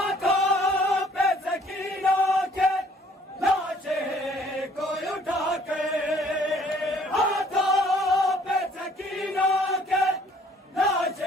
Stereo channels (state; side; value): normal; both; correlation 0.59